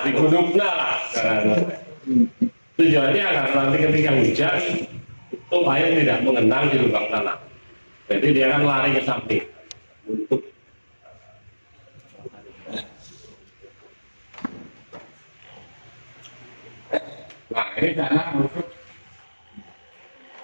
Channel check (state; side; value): inverted; both; correlation -1.00